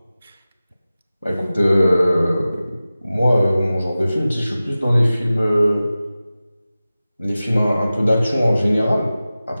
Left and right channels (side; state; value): both; inverted; correlation -0.96